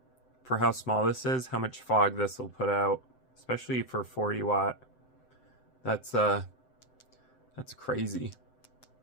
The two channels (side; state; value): right; late; 7.8 ms